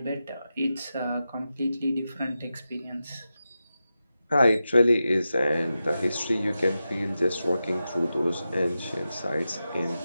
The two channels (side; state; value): both; inverted; correlation -0.91